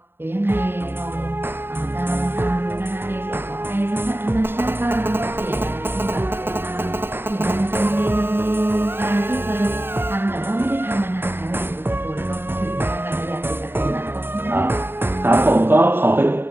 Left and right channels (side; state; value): left; late; 0.11 ms